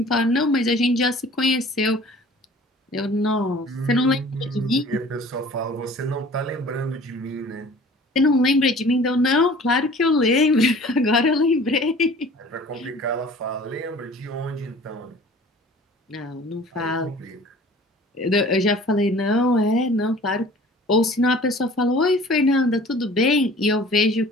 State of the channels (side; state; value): both; normal; correlation 0.47